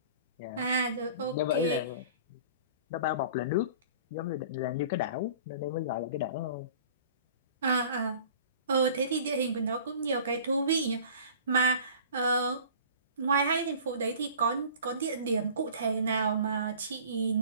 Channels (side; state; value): both; inverted; correlation -0.45